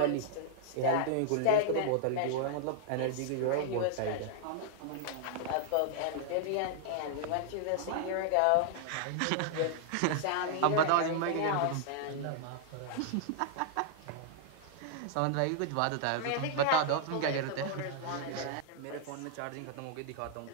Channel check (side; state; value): both; different; correlation -0.01